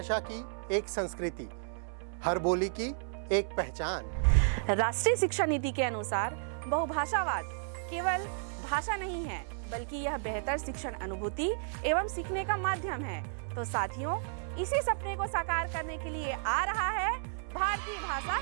की एक संस्कृति, हर बोली की एक पहचान। राष्ट्रीय शिक्षा नीति के अनुसार बहुभाषावाद केवल भाषा नहीं है, बल्कि यह बेहतर शिक्षण अनुभूति एवं सीखने का माध्यम है। तो साथियों, इसी सपने को साकार करने के लिए आ रहा है भारतीय भाषा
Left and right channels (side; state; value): left; silent; 56 dB below the other